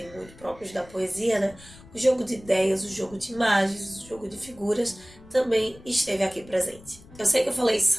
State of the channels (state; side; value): noise; left; rumble, 21 dB below the sound